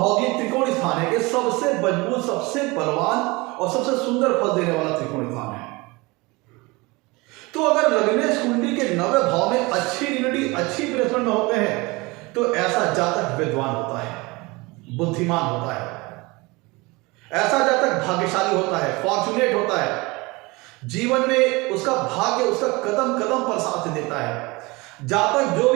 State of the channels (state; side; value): quieter; left; 24.2 dB